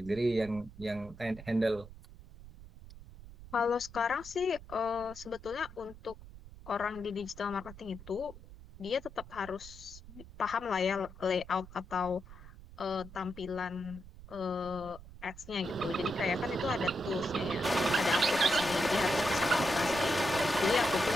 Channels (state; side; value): noise; right; rumble, 17 dB below the sound